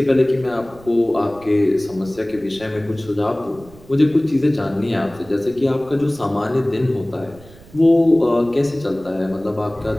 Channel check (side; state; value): right; noise; rumble, 22 dB below the sound